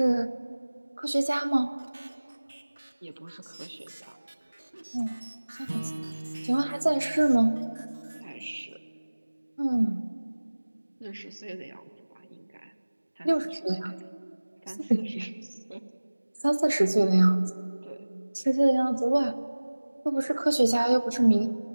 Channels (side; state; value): both; inverted; correlation -1.00